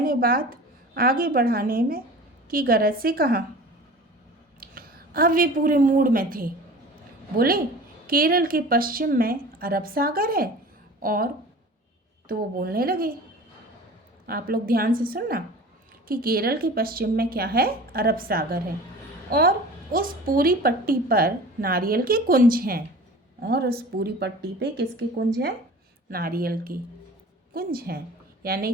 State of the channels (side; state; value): both; normal; correlation 0.40